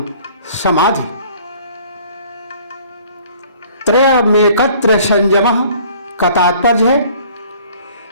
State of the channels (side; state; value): both; inverted; correlation -0.54